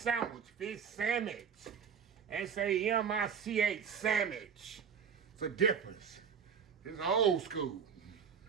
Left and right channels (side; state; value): left; quieter; 6.9 dB